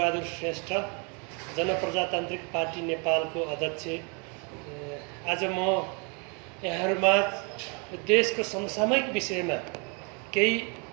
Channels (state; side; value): quieter; left; 34.8 dB